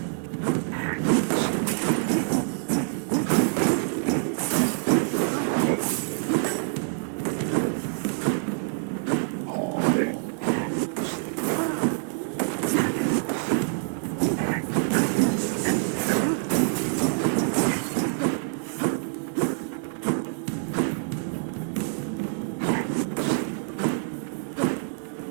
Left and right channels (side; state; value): left; silent; 60 dB below the other